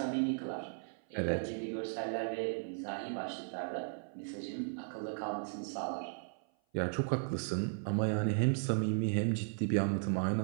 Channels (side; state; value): left; silent; 54 dB below the other